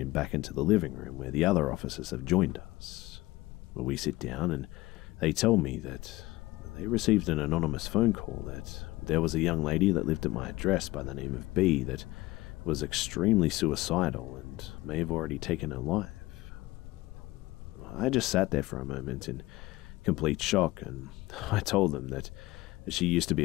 back into the living room where the other officers have joined us. We sit down and they tell me that they received an anonymous phone call that there was a young lady that lived at my address by the name of B that was extremely suicidal and may have already taken her life. I just sat there for a moment in complete shock, and I told them that she used to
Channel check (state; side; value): quieter; right; 19.2 dB